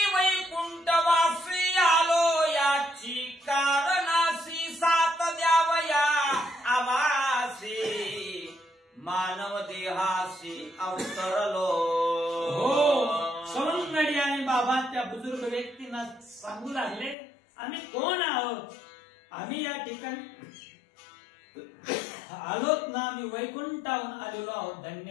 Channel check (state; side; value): drops out; right; at 17.2 s